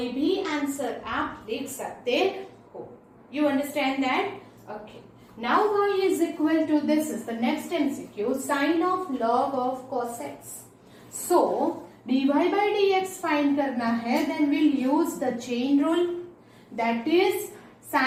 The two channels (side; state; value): both; identical; correlation 1.00